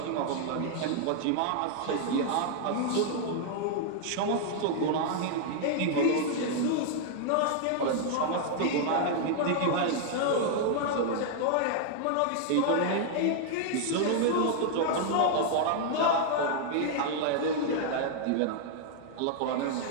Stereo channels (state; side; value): different; both; correlation 0.00